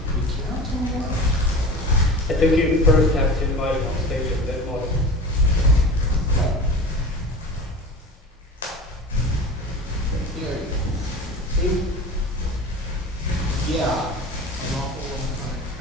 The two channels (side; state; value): both; normal; correlation 0.35